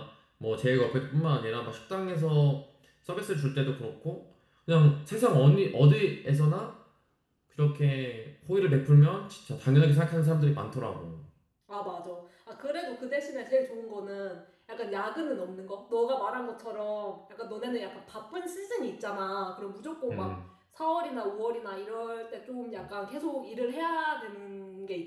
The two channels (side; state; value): both; identical; correlation 1.00